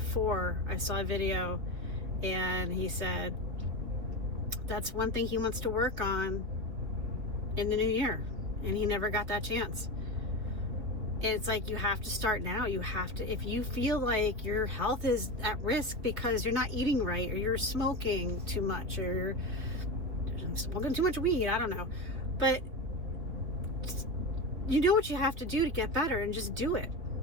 I saw a video, and he said that's one thing he wants to work on in the new year, and he never got that chance. It's like, you have to start now. You have to, if you feel like your health is at risk because you're not eating right, or you're smoking too much, or smoking too much weed, I don't know, but you know what you have to do to get better, and just do it.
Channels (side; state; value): left; late; 3.4 ms